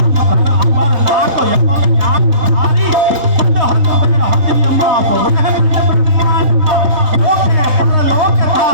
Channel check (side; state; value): left; late; 3.2 ms